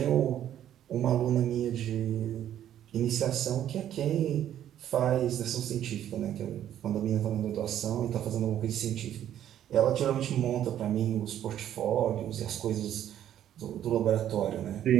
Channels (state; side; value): quieter; left; 11.0 dB